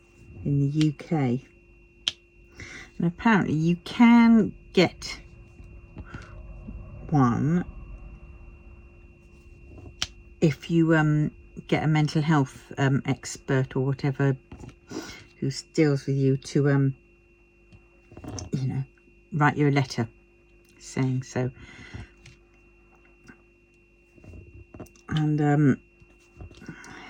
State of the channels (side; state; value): both; identical; correlation 1.00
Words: in the UK. And apparently you can get one if you get a mental health expert or whatever who deals with you to you know, write you a letter saying so. And